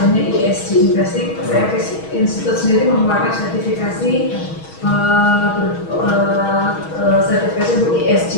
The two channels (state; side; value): late; right; 6.3 ms